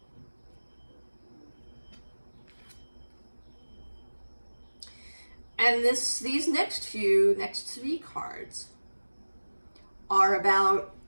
And these next three cards are about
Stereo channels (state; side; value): inverted; both; correlation -1.00